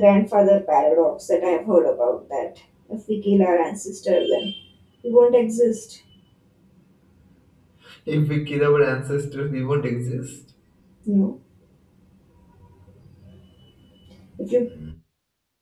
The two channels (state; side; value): identical; both; correlation 1.00